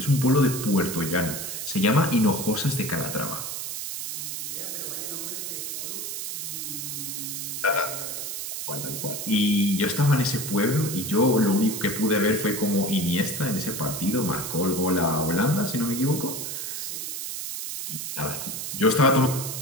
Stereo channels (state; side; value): noise; right; hiss, 5 dB below the sound